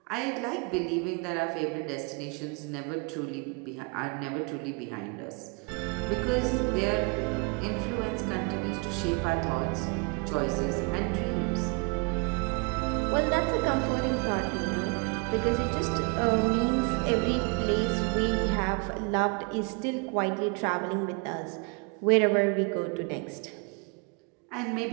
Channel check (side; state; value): left; quieter; 32.7 dB